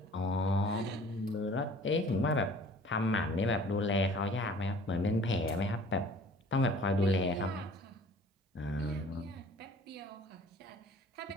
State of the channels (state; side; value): normal; both; correlation 0.50